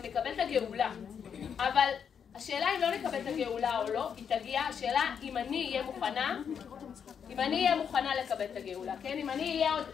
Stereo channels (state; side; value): quieter; right; 7.4 dB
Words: נקבל את הגאולה. אבל השאלה אם לא נקבל את הגאולה או לא, היא תגיע, השאלה אם אני אהיה מוכנה לקבל את הגאולה, כן? אם אני אהיה עוד,